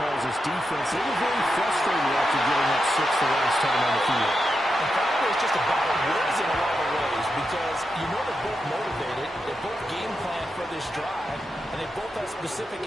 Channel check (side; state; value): both; normal; correlation 0.87